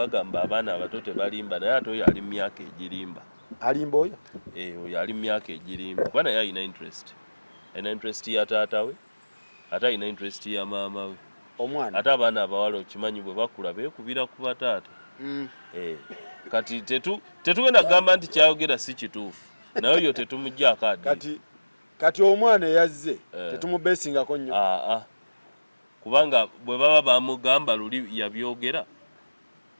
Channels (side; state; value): both; inverted; correlation -1.00